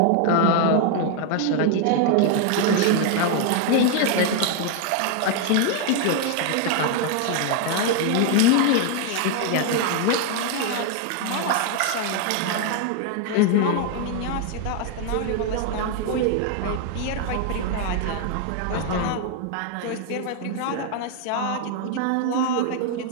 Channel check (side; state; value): both; different; correlation 0.00